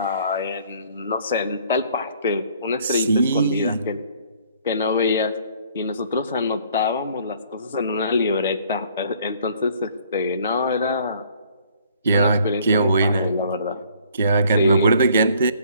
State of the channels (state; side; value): inverted; both; correlation -0.59